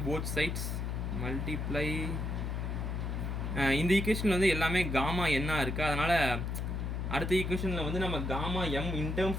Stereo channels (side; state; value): left; noise; hum, 2 dB below the sound